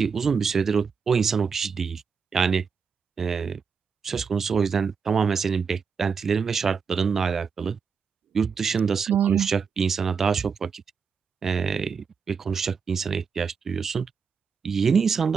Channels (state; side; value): quieter; left; 5.9 dB